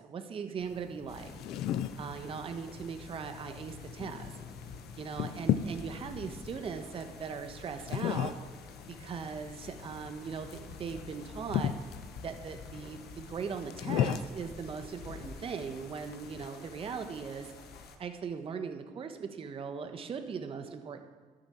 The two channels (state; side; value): normal; both; correlation 0.47